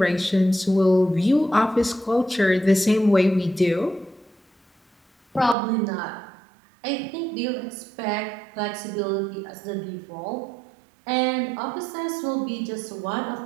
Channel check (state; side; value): drops out; left; at 5.6 s